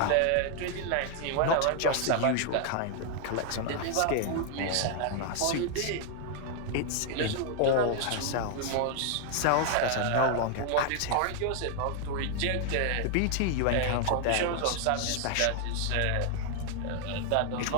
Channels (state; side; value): different; both; correlation 0.00